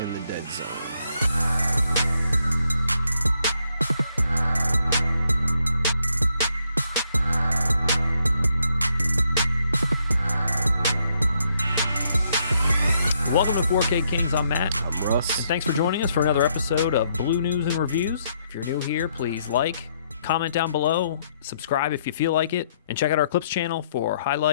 The Dead Zone. Welcome to 4K Kings. I'm Matt. I'm Russ. And thanks for joining us for another episode of Blue News and Reviews. If you're new here, please like, comment down below, subscribe if you feel like it, and check out our Clips channel for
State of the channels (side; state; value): both; inverted; correlation -0.74